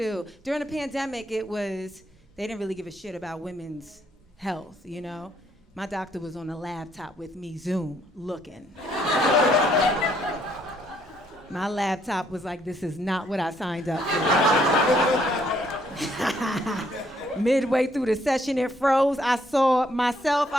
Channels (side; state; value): both; normal; correlation 0.69